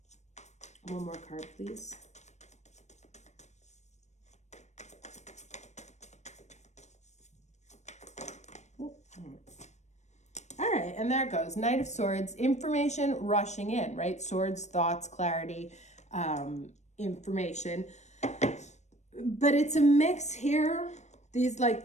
One more card, please. All right, and there it goes. Knight of Swords, information rushing in, right? Swords, thoughts, clarity, information. But it's a mix here.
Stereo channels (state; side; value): late; right; 0.33 ms